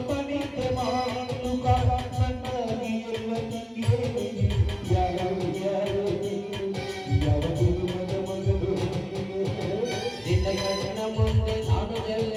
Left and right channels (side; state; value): both; identical; correlation 1.00